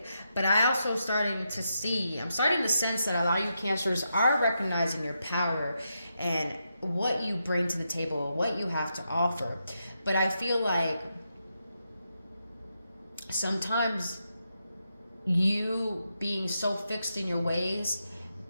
But I'm starting to sense that a lot of you Cancers are recognizing your power and what you bring to the table, what you have to offer. But I feel like sometimes you being so fixed in your ways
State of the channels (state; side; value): inverted; both; correlation -0.84